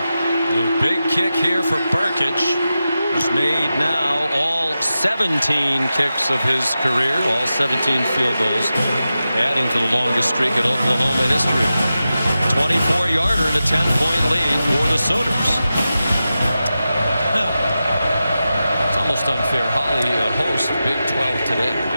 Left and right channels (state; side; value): inverted; both; correlation -0.92